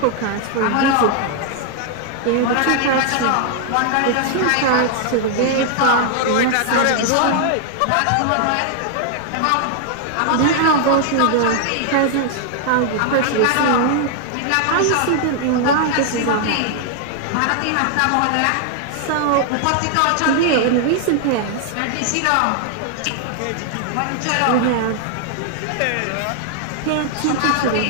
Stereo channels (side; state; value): both; different; correlation 0.00